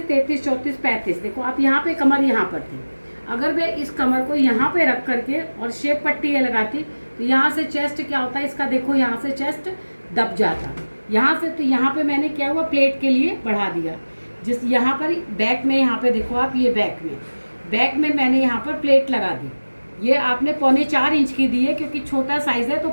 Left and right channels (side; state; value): both; inverted; correlation -1.00